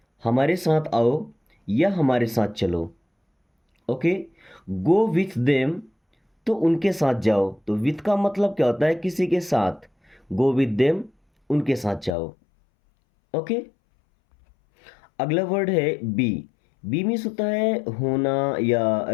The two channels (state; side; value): drops out; right; at 12.2 s